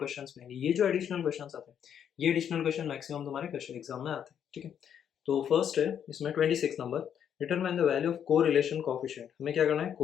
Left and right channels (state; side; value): quieter; right; 8.8 dB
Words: में ये जो एडिशनल क्वेश्चंस आते हैं, ये एडिशनल क्वेश्चन मैक्सिमम तुम्हारे क्वेश्चन एग्जाम में आते हैं। ठीक है, तो फर्स्ट है इसमें 26 number, determine the value of correlation coefficient. हमें क्या करना है,